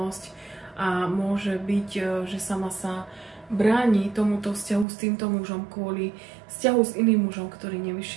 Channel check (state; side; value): drops out; left; at 4.9 s